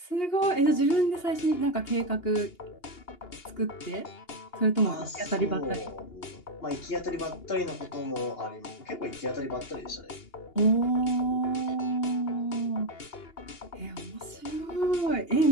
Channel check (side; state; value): right; late; 2.8 ms